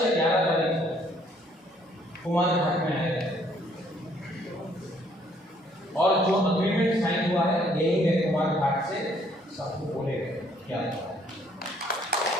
या 11 तारीख को कुमार घाट में आएगा, और जो अग्रीमेंट साइन हुआ है यही है, कुमार घाट से सबको बोलेगा क्या हुआ है।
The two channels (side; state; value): both; normal; correlation 0.64